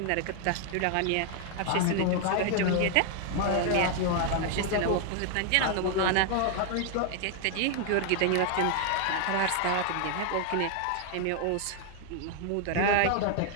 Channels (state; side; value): different; both; correlation 0.00